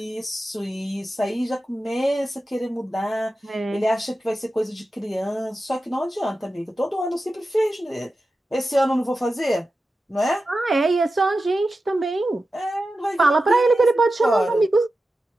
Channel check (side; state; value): both; normal; correlation 0.92